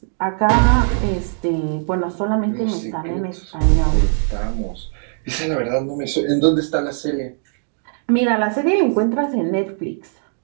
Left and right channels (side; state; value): left; silent; 66 dB below the other